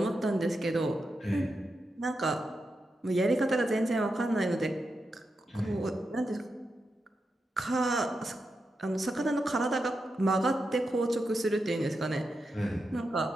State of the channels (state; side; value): normal; both; correlation 0.87